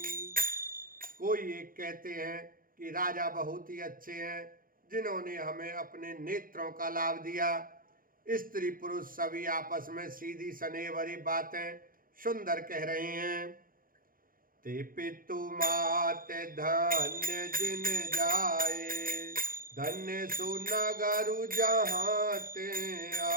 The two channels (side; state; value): left; late; 0.41 ms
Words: कोई एक कहते हैं कि राजा बहुत ही अच्छे हैं जिन्होंने हमें अपने नेत्रों का लाभ दिया। स्त्री पुरुष सभी आपस में सीधी स्नेह भरी बातें सुंदर कह रहे हैं। ते पितु मात धन्य जिन जाए, धन्य सुनगरु जहाँ ते